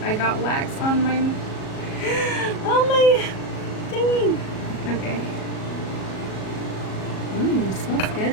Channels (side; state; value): right; late; 37 ms